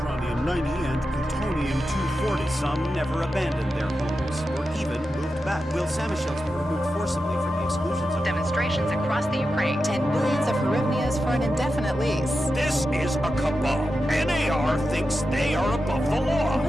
and plutonium-240. Some never abandoned their homes, or even moved back. Will Samoshells were removed forcibly from the exclusion zone. Demonstrations across the Ukraine. 10 billions of hryvnias for an indefinite lease. This is a cabal. NAR thinks they are above the law.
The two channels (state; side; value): normal; both; correlation 0.90